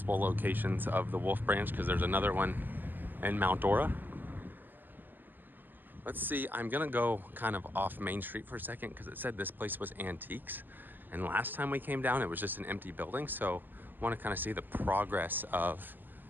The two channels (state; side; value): late; left; 0.089 ms